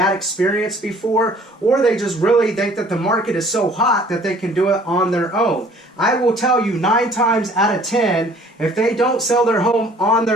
experience before, or they just really think that the market is so hot that they can do it on their own. I will tell you 9 times out of 10, if they don't sell their home on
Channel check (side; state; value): both; normal; correlation 0.54